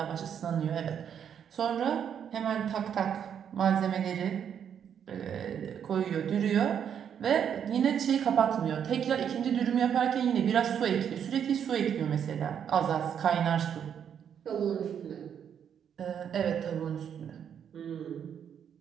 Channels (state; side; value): quieter; left; 8.4 dB